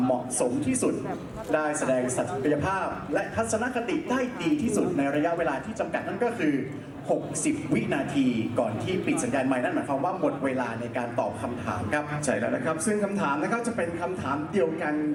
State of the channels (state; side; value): identical; both; correlation 1.00